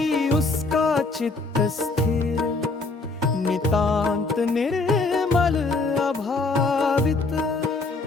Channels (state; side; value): quieter; right; 3.6 dB